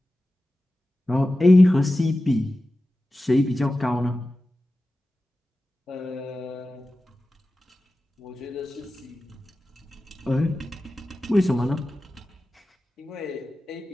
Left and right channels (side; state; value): both; normal; correlation 0.94